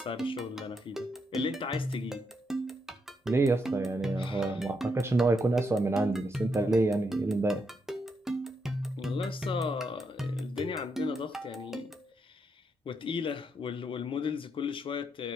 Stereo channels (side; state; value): both; normal; correlation 0.80